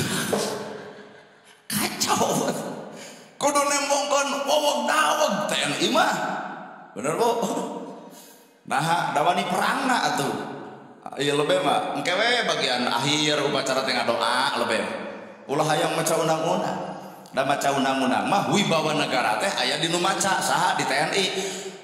kacau kudu nembongkeun wowog daweg TNI mah bener Bu nah dawani perangna atuh ieu lebe mah engke we bagian akhir upacara teh ngadoa lebe ulah hayang maca undang-undang da maca undang-undang mah wibawa negara teh aya di nu maca saha di TNI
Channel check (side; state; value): both; identical; correlation 1.00